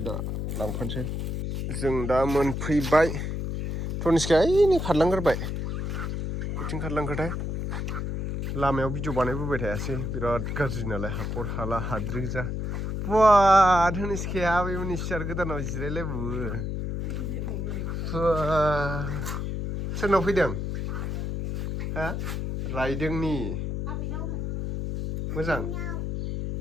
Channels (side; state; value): left; noise; hum, 3 dB below the sound